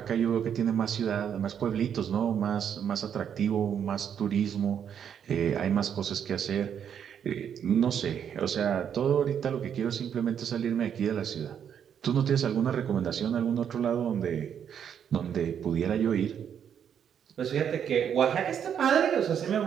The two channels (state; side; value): quieter; left; 8.4 dB